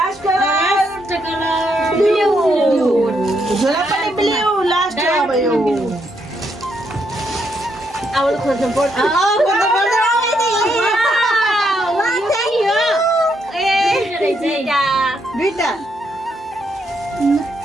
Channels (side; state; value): both; normal; correlation 0.77